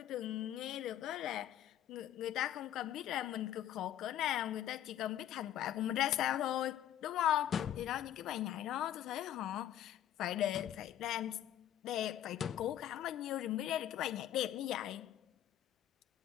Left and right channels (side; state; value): right; quieter; 11.6 dB